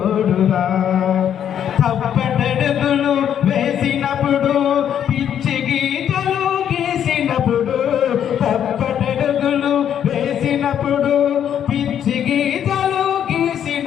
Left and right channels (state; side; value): quieter; right; 9.4 dB